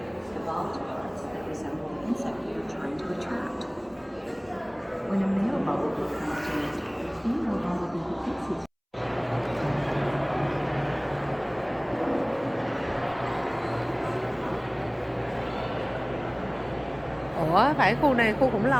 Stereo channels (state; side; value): identical; both; correlation 1.00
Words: Evolved parts that resemble insect you're trying to attract. When a male bumblebee comes to nest, the female bumblebee hits his Ủa, phải khu này khu khủng